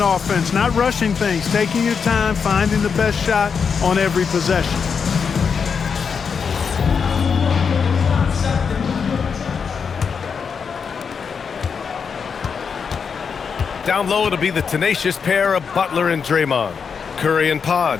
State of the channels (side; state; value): right; quieter; 6.1 dB